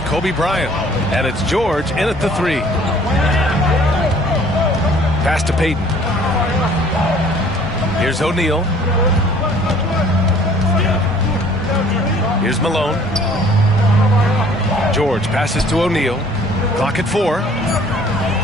Kobe Bryant, and it's George in at the three. Pass to Payton. Here's O'Neal. Here's Malone. George passes to O'Neal. Clock at 4.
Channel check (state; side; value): normal; both; correlation 0.55